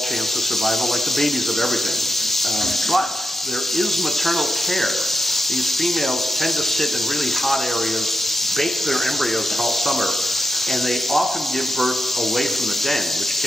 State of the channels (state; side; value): normal; both; correlation 0.86